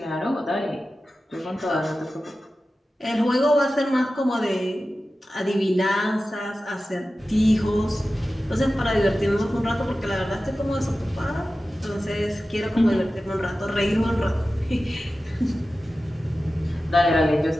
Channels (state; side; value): normal; both; correlation 0.94